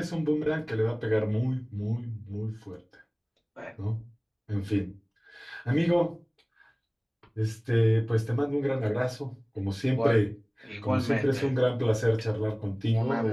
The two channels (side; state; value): both; identical; correlation 1.00